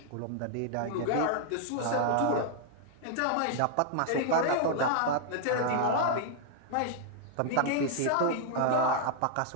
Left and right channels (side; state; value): both; different; correlation -0.01